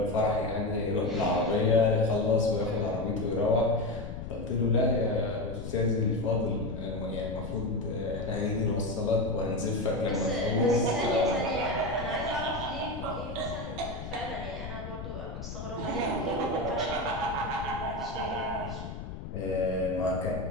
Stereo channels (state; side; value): noise; left; rumble, 9 dB below the sound